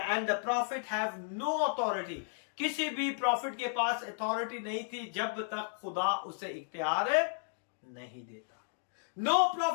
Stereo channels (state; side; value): silent; right; digital silence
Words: And the prophet have no authority. किसी भी प्रॉफिट के पास अथॉरिटी नहीं थी जब तक खुदा उसे इख्तियार नहीं देता. No